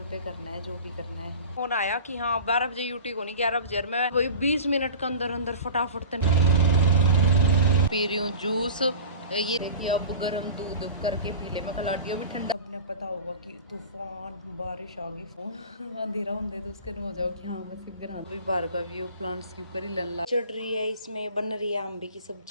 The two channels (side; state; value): both; inverted; correlation -0.37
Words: पे करना है जो भी करना है। फोन आया कि हाँ 12 बजे यूटी को नहीं 11 बजे, मैं वही 20 मिनट के अंदर अंदर फटाफट पी रही हूँ जूस। ये देखिए अब गर्म दूध करके पी ले, मैं कलाटियो भी ठंडा। अपने पता होगा कि तूफान बारिश आ गई, फोन अंधेरा होंगे तो उसके हो जाओ कि हाँ बस घर भी बाहर का व्यू प्लांट्स के ऊपर ही लल्ला चढ़ रही है। इसमें बन रही है अम्बे की